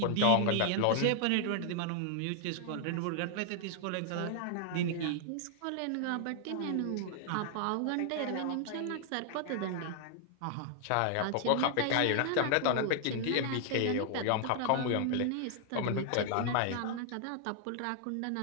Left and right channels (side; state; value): both; different; correlation 0.00